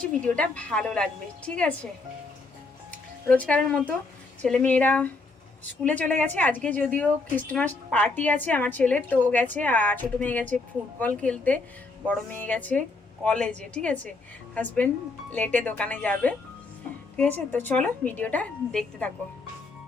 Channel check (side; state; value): right; quieter; 3.6 dB